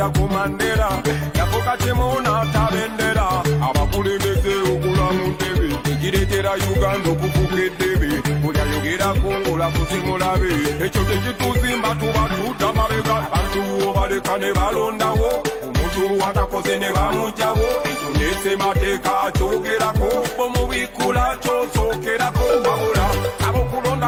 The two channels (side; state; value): both; identical; correlation 1.00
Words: ku Mandela yafuka temunaata bendera abakulembeze okula mu ntebe ekireetera Uganda okufuka eddebe buli ayogerako ng'olakusimulabe ekyo tekituzimba tuba tuta mabega abantu obaleka ne balondawo omuntu atakoze ne bamugjawo ekyo nesemateeka akyogerako bomubikula kyosookerako wabula